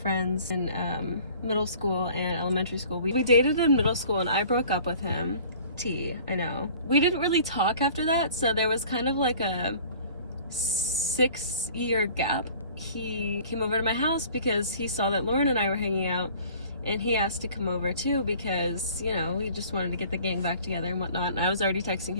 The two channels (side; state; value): both; inverted; correlation -0.49